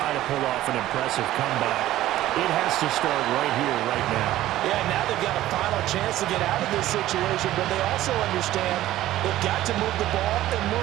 to pull off an impressive comeback, it has to start right here, right now. Yeah, now they've got a final chance to get out of this situation, but they also understand they've got to move the ball and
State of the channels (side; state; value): left; quieter; 14.6 dB